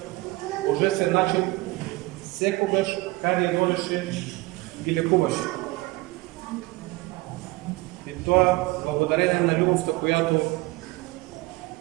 божествен начин секогаш каде одеше ги лекуваше. И тоа благодарение на љубовта којато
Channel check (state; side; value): quieter; left; 21.8 dB